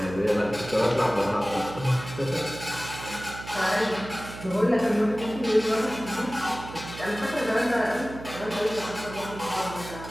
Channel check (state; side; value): noise; right; hum, 12 dB below the sound